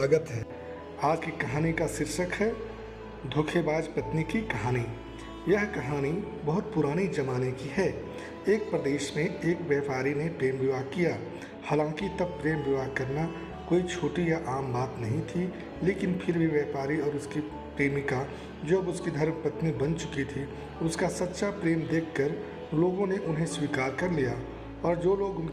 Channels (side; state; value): both; identical; correlation 1.00